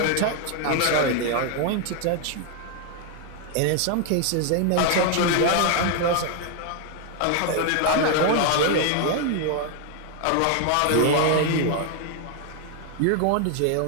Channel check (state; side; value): different; both; correlation 0.01